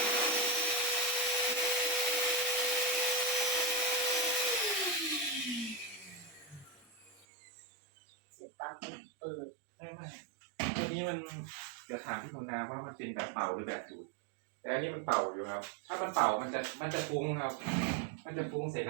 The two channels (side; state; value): left; drops out; at 7.2 s